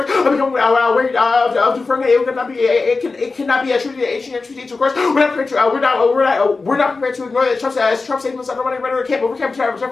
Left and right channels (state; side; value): quieter; right; 4.0 dB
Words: Become wary of deferring it cannot be attributed to ancient treaties, of course. We're not prepared to ignore that Trump statements undermining rhetoric can't overcome